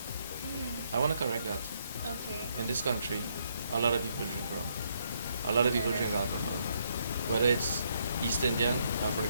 I want to correct that. Okay. In this country, a lot of people drink rum. A lot of people drink alcohol, whether it's East Indian,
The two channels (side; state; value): both; inverted; correlation -0.73